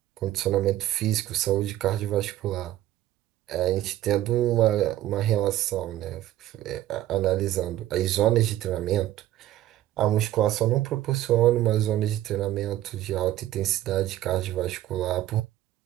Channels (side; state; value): left; quieter; 13.7 dB